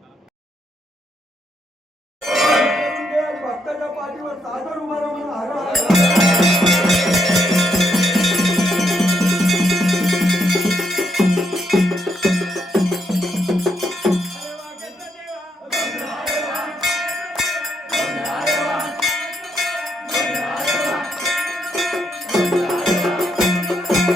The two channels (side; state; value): both; normal; correlation 0.77